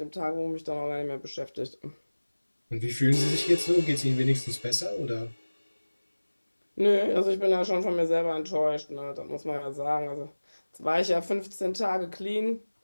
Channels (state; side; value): inverted; both; correlation -1.00